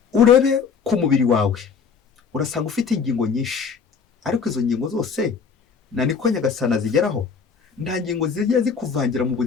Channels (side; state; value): right; quieter; 5.9 dB